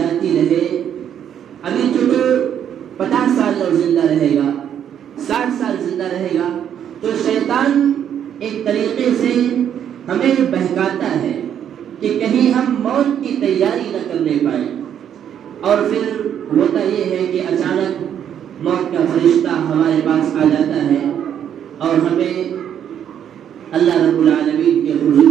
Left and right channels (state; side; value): quieter; left; 9.3 dB